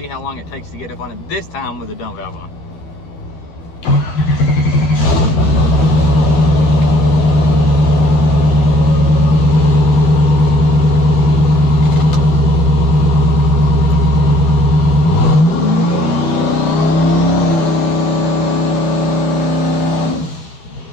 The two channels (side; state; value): right; late; 12 ms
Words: how long it takes to get up on it, this time with the dump valve on.